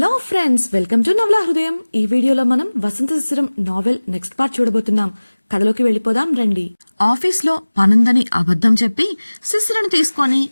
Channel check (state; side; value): inverted; both; correlation -1.00